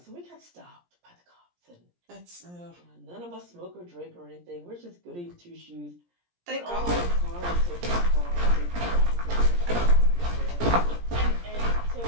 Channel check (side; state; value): left; late; 17 ms